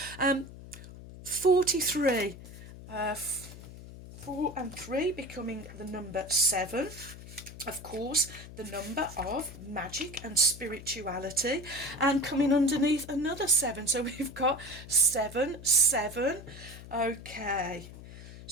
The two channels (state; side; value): noise; left; hum, 15 dB below the sound